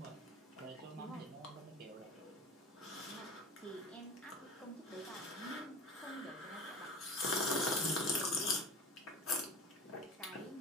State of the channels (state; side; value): normal; both; correlation 0.34